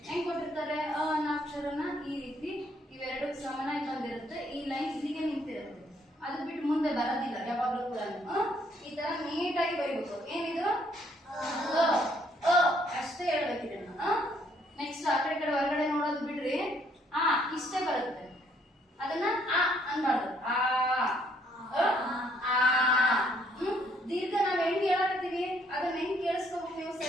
ಹೆಂಗ್ ಕೊಟ್ಟಿರ್ತಾರೆ. ಅನ್ನೋ ಅಕ್ಷರನ ಈ ರೀತಿ ಇವೆರಡು ಸಮನಾಗಿ ಬಂದಿರುತ್ತೆ. ಈ ಲೈನ್ ಇಲ್ಲಿಗೆ ನಿಂತಿರುತ್ತೆ, ಅದು ಬಿಟ್ಟು ಮುಂದೆ ಬರೋದಿಲ್ಲ ಯಾವಾಗ್ಲೂ ಕೂಡ. ಈ ತರ ನೀಟಾಗಿ ಬರೀಬೇಕು. ಏನಿದು ಅಷ್ಟೇ ಹೇಳ್ಬೇಕಿದೆ. ನೆಕ್ಸ್ಟ್ ಆ ಕಡೆ ಹೊರಗಡೆ ನೋಡೋದು ಬಿಡ್ರಿ. ಇಷ್ಟೇ ಬರುತ್ತೆ, ಅದನ್ನ ಅನ್ಬಾರ್ದು. ದೀರ್ಘ ನಾವ್ ಹೆಂಗ್ ಹೇಳಕತ್ತೀವಿ ಅದನ್ನ ಹೆಂಗ್ ಕೇಳಿಸ್ಕೋಬೇಕು ನೀವು,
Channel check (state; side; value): normal; both; correlation 0.68